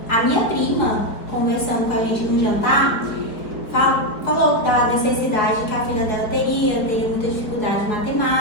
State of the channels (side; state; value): right; late; 4.6 ms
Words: a minha prima, conversando com a gente no jantar, falou da necessidade que a filha dela teria muita dificuldade em